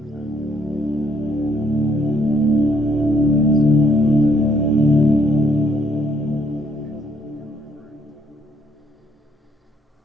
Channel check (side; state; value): both; normal; correlation 0.69